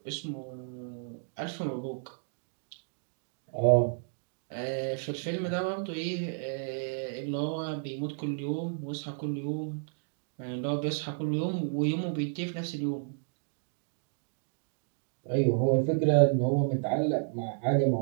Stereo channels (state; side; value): silent; left; digital silence